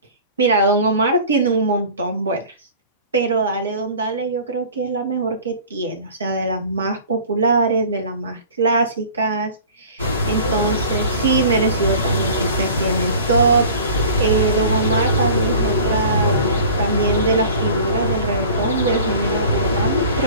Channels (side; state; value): both; inverted; correlation -0.43